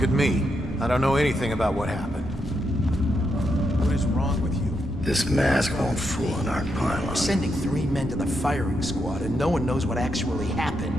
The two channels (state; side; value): normal; both; correlation 0.82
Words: at me. I don't know anything about what happened. What is wrong with you? This mask won't fool an arc pylon. We're sending 3 men to the firing squad, and no one knows what actually